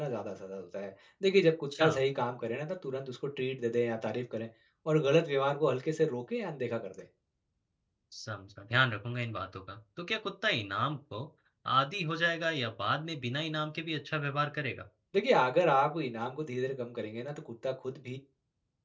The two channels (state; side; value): identical; both; correlation 1.00